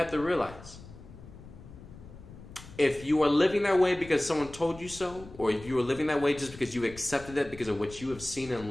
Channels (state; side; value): noise; left; rumble, 17 dB below the sound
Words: to realize, if you are living that way because someone told you so, or if you are living that way just because you accepted it because of what you have seen